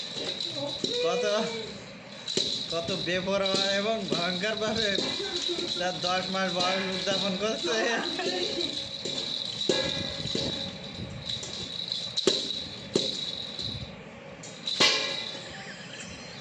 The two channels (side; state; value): both; identical; correlation 1.00